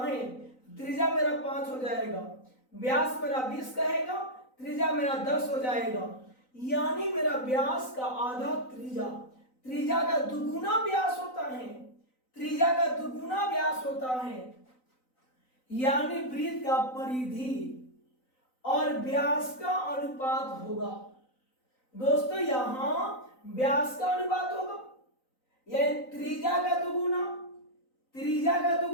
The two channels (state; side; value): late; right; 3.9 ms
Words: त्रिज्या मेरा 5 हो जाएगा। व्यास मेरा 20 कहेगा, त्रिज्या मेरा 10 हो जाएगा। यानी मेरा व्यास का आधा त्रिज्या, त्रिज्या का दुगुना व्यास होता है, त्रिज्या का दुगुना व्यास होता है। यानी वृत्त का परिधि और व्यास का अनुपात होगा। दोस्तों यहां व्यास का अनुपात होगा, यानी त्रिज्या का दुगुना, त्रिज्या का